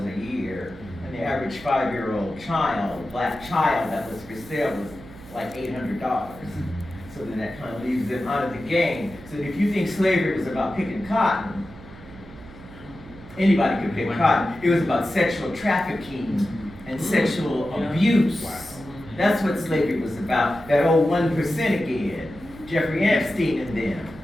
a year, and the average 5-year-old child, black child that was for sale was like $800. So then that kind of leaves them out of the game. So if you think slavery was about picking cotton, anybody could pick cotton. It was about sexual trafficking and sexual abuse. That's what slavery was about. That old 1% again. Jeffrey Epstein and them.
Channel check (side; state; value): right; noise; hum, 18 dB below the sound